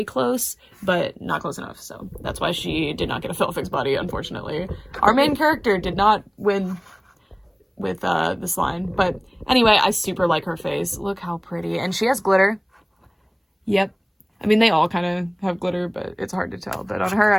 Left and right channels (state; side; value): identical; both; correlation 1.00